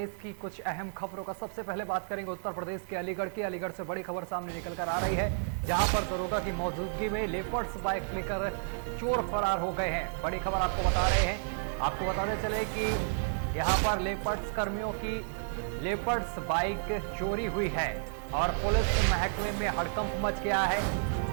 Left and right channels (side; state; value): left; silent; digital silence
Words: की कुछ अहम खबरों का। सबसे पहले बात करेंगे उत्तर प्रदेश के अलीगढ़ की। अलीगढ़ से बड़ी खबर सामने निकल कर आ रही है, जहां पर दरोगा की मौजूदगी में लेपर्ड्स बाइक लेकर चोर फरार हो गए हैं। बड़ी खबर आपको बता रहे हैं। आपको बताते चले कि यहाँ पर लेपर्ड्स कर्मियों की लेपर्ड्स बाइक चोरी हुई है और पुलिस महकमे में हड़कंप मच गया है।